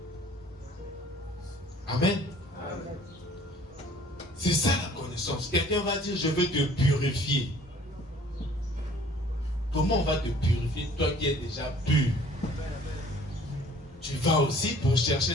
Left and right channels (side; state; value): both; normal; correlation 0.53